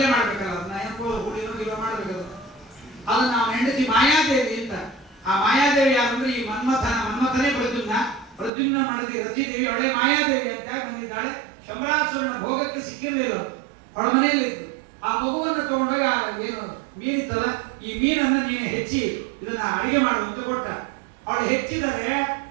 ಮಾಡ್ಬೇಕಲ್ಲ, ಅದನ್ನ ಏನೋ ಹುಳಿನೋ ಮಾಡ್ಬೇಕಲ್ಲ. ಅದನ್ನ ನಾವು ಹೆಂಡತಿ ಮಾಯಾದೇವಿ ಅಂತ. ಆ ಮಾಯಾದೇವಿ ಯಾರಂದ್ರೆ ಈ ಮನ್ಮಥನೇ ಪ್ರದ್ಯುಮ್ನ ಮಾಡದಿ ರತಿದೇವಿ, ಅವಳೇ ಮಾಯಾದೇವಿ ಅಂತ ಯಾಕೆ ಬಂದಿದ್ದಾಳೆ? ಶಂಬರಾಸುರನ ಭೋಗಕ್ಕೆ ಸಿಕ್ಕಿರಲಿಲ್ಲ, ಅವಳ ಮನೆಯಲ್ಲಿ ಇತ್ತು. ಆ ಮಗುವನ್ನು ತಗೊಂಡಾಗ ಏನು ಮೀನಿತ್ತಲ್ಲ, ಈ ಮೀನನ್ನ ನೀನು ಹೆಚ್ಚಿ ಇದನ್ನ ಅಡಿಗೆ ಮಾಡುವಂತ ಕೊಟ್ಟ. ಅವಳು ಹೆಚ್ಚಿದರೆ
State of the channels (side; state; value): left; drops out; at 8.5 s